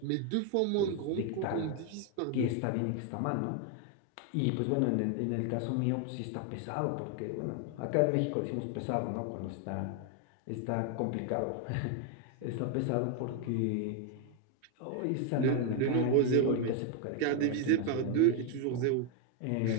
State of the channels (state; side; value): different; both; correlation 0.01